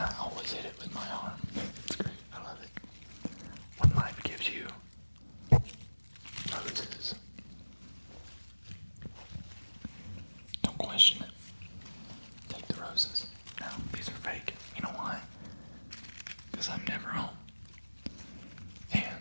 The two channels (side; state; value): both; inverted; correlation -1.00